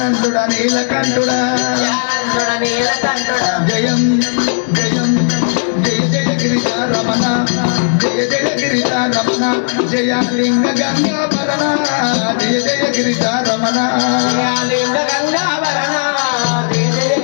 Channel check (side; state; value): right; silent; digital silence